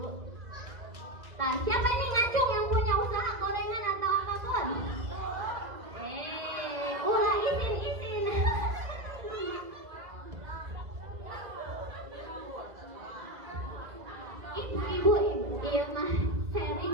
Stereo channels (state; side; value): late; left; 2.0 ms